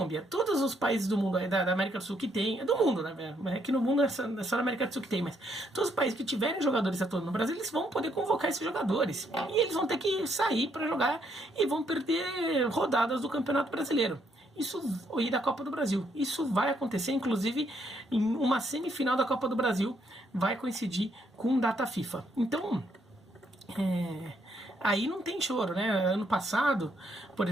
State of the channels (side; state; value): both; normal; correlation 0.73